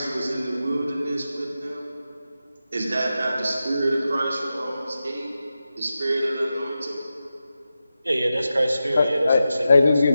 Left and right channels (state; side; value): inverted; both; correlation -0.91